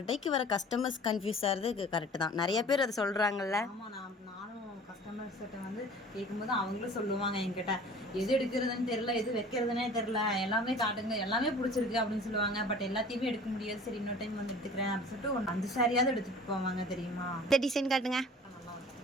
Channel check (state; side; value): normal; both; correlation 0.45